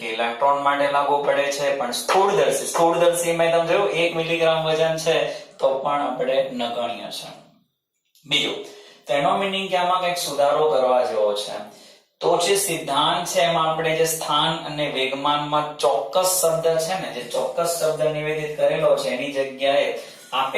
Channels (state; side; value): identical; both; correlation 1.00